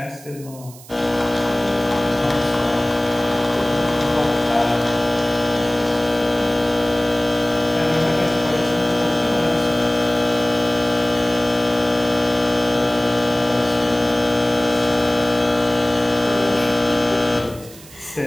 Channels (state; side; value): noise; right; hiss, 20 dB below the sound